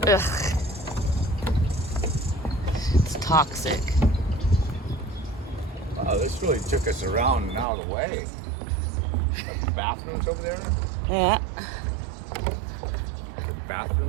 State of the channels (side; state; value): left; drops out; at 7.7 s